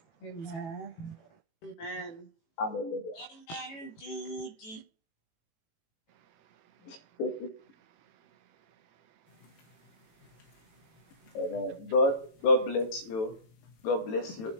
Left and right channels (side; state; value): right; late; 18 ms